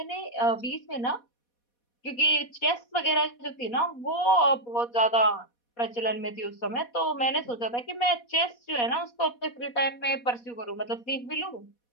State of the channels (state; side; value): late; right; 4.2 ms